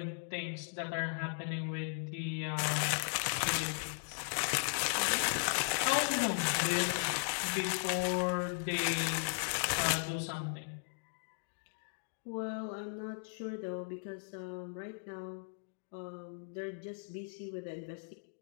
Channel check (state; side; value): silent; right; digital silence